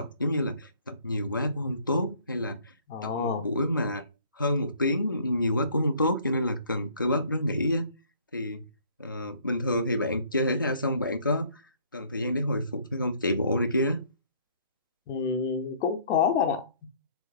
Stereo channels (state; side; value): inverted; both; correlation -0.58